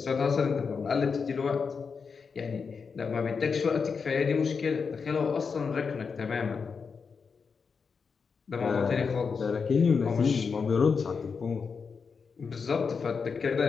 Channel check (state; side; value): quieter; right; 5.5 dB